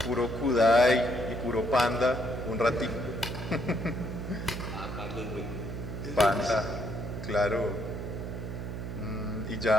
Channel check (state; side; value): noise; right; hum, 6 dB below the sound